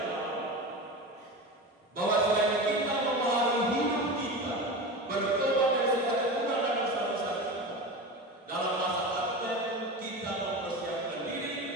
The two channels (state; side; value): normal; both; correlation 0.27